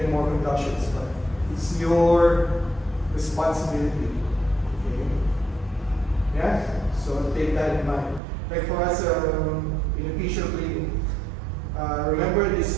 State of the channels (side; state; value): left; drops out; at 8.2 s